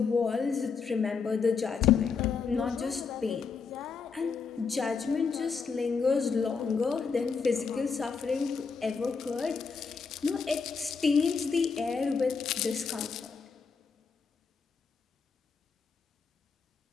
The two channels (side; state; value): right; quieter; 5.4 dB